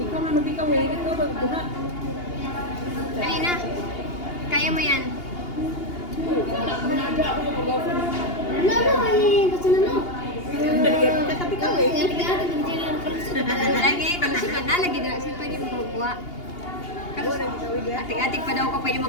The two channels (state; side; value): late; right; 2.8 ms